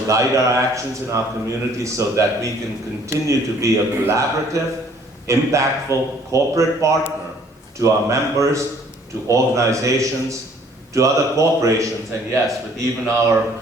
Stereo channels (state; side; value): normal; both; correlation 0.58